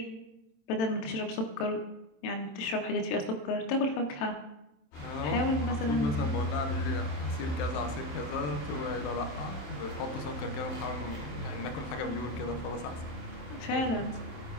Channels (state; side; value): late; right; 27 ms